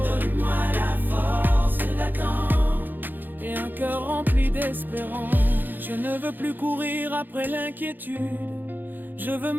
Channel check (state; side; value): late; left; 0.089 ms